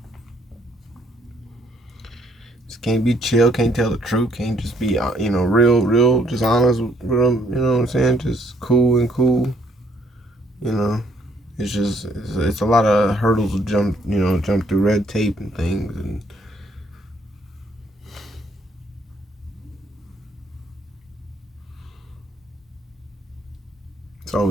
just can't be chill, can't tell the truth, can't just be, you know, real, just honest with them, you know what I'm saying? Just cool, you know. It's a lot of hurdles to jump through, red tape and things, and it's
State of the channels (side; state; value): both; normal; correlation 0.65